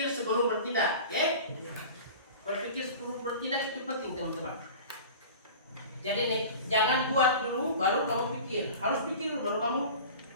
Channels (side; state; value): both; inverted; correlation -0.38